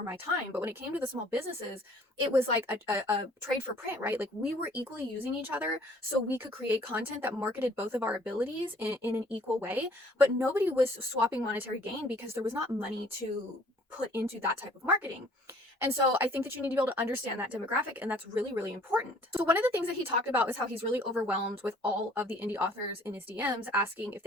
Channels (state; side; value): normal; both; correlation 0.56